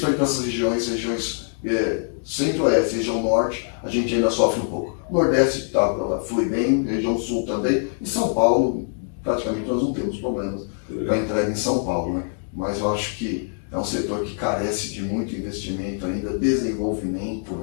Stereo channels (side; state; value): right; silent; digital silence